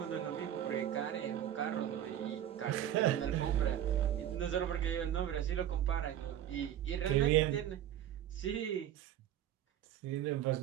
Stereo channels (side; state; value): left; quieter; 11.1 dB